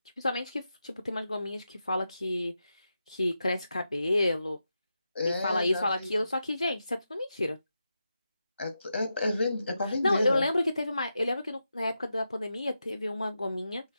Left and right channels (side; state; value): both; inverted; correlation -0.88